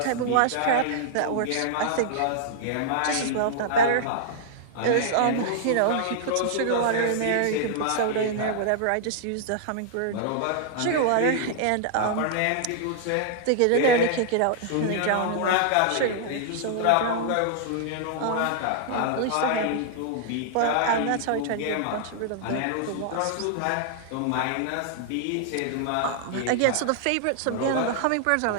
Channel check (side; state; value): both; different; correlation -0.01